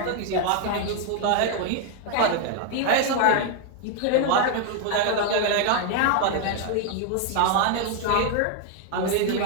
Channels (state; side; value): different; both; correlation 0.00